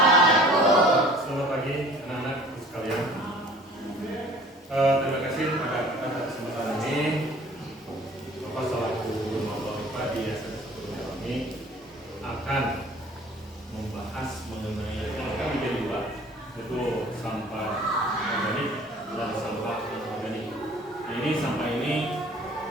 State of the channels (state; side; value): normal; both; correlation 0.49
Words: Selamat pagi anak-anak sekalian. Terima kasih pada kesempatan ini. Bapak selaku guru Mapalipa di SMP 1 kami akan membahas mengenai kami menjadi dua, yaitu sampah organik dan sampah anorganik. Nah, ini sampah ini